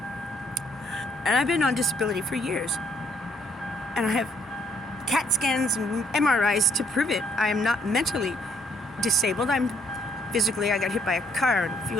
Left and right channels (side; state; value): both; normal; correlation 0.67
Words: And I've been on disability for years. And I have CAT scans and MRIs to prove it. I am not mentally disabled. I got hit by a car and a